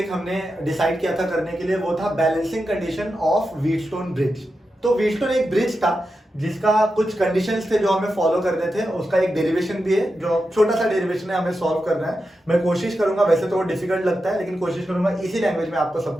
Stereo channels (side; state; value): both; normal; correlation 0.89